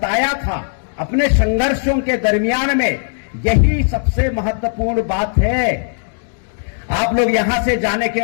था अपने संघर्षों के दरमियान में, यही सबसे महत्वपूर्ण बात है। आप लोग यहां से जाने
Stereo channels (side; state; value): right; silent; digital silence